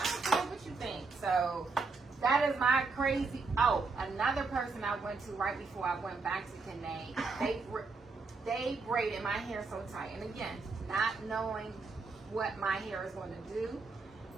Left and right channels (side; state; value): left; quieter; 4.2 dB